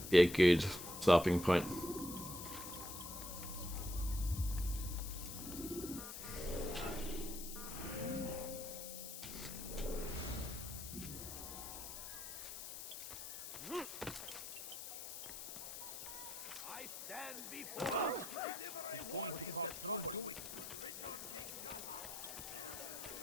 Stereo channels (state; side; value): noise; left; hiss, 8 dB below the sound